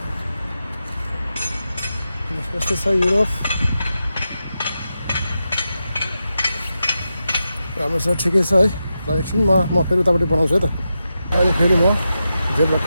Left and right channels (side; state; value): both; inverted; correlation -0.89